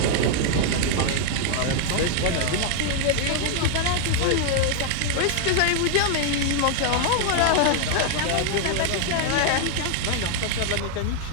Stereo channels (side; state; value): both; different; correlation -0.01